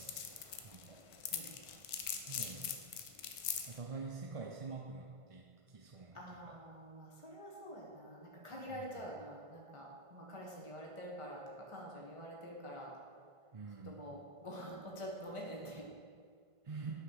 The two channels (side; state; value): left; late; 1.5 ms